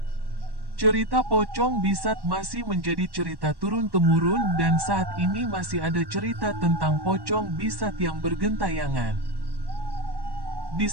Cerita pocong Bisat masih menjadi cerita turun-temurun dan saat ini masih ada cerita tentang pocong Bisat yang bergentayangan.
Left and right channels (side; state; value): left; late; 1.1 ms